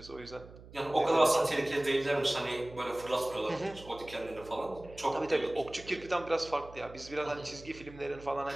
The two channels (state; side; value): noise; right; hum, 18 dB below the sound